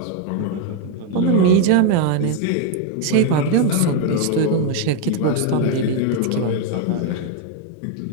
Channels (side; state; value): both; different; correlation 0.01